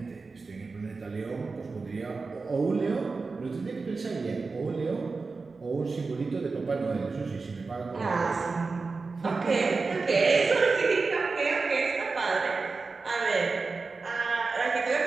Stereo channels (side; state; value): left; quieter; 4.2 dB